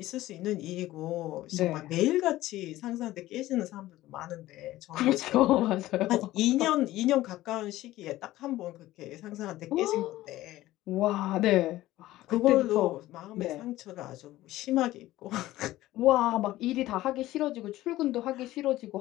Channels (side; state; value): right; quieter; 16.0 dB